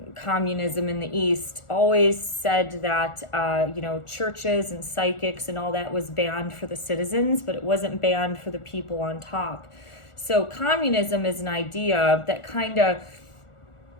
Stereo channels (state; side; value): late; right; 1.4 ms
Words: communism in the East, always said that, churches and psychics and all that was banned for the citizens, but it wasn't banned for the people on top. So communism is an idea that kind of